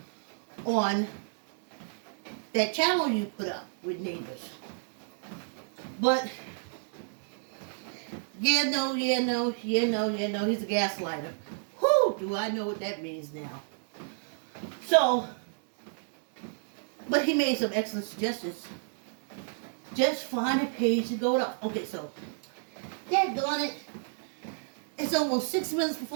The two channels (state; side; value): silent; left; digital silence